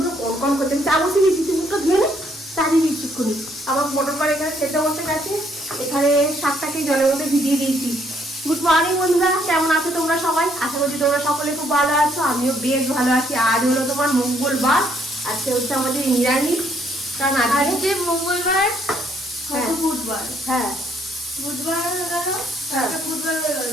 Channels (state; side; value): normal; both; correlation 0.69